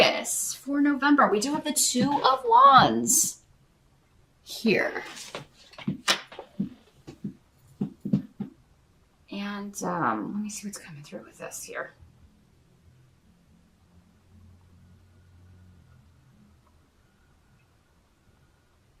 for November, we do have the Two of Wands here. And let me see what's coming through with this here.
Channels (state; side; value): identical; both; correlation 1.00